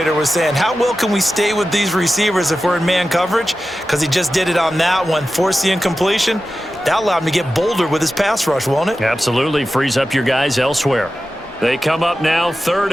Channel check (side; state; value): both; normal; correlation 0.93